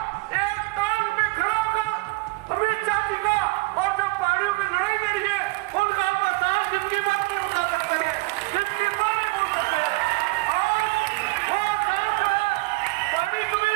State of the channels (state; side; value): quieter; left; 24.4 dB